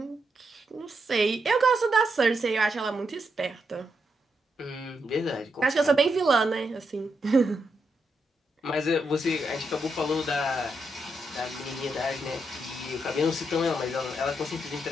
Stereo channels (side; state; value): both; normal; correlation 0.82